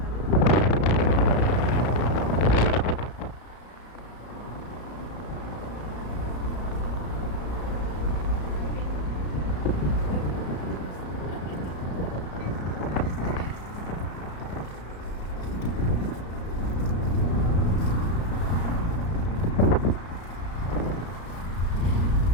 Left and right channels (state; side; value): late; right; 34 ms